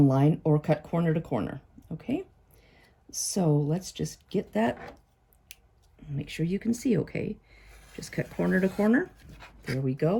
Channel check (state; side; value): identical; both; correlation 1.00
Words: line, or cut corner to corner. Okay? So let's just get that. Make sure you can see okay. Just cut corner to corner. There we